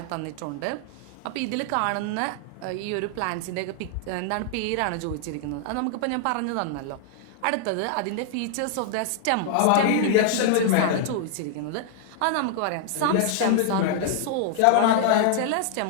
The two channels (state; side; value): different; both; correlation -0.01